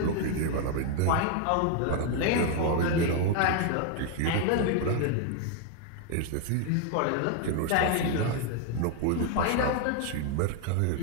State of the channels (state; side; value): different; both; correlation 0.00